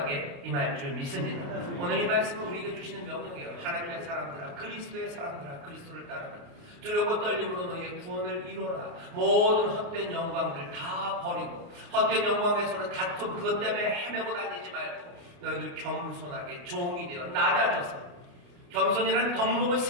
임할 줄 믿습니다. 오늘 이 말씀은 우리에게 주시는 명령이에요. 하나님의 사람들아, 그리스도의 사람들아, 그리스도를 따르라. 두려고 떨림으로 너희의 구원을 이루어라. 모든 헛된 영광들 다 버리고 헛된 영광에서는 다툼 그것 때문에 헤매고 다니지 말고 너희들 겸손하게 종이 되어 낮아져서 겸손이라는 덕목을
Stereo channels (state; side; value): late; left; 29 ms